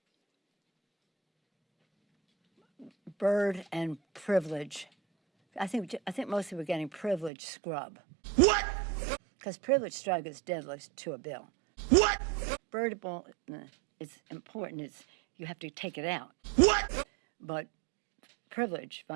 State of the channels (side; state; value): left; drops out; at 7.3 s